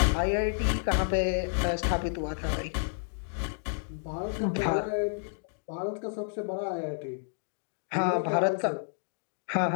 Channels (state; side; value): silent; right; digital silence